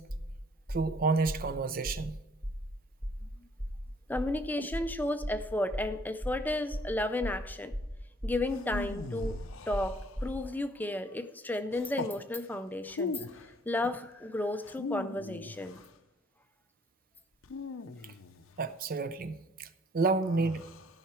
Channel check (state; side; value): normal; both; correlation 0.62